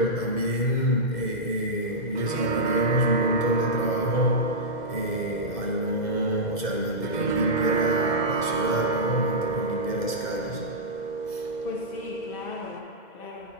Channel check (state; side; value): late; right; 2.0 ms